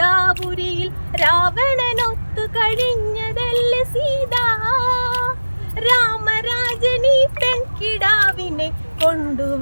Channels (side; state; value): both; inverted; correlation -1.00